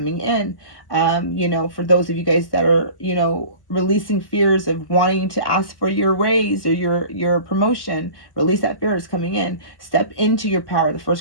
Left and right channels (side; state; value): right; late; 1.0 ms